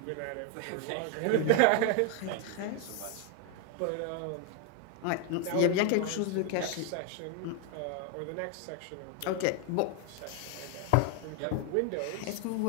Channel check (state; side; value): different; both; correlation 0.00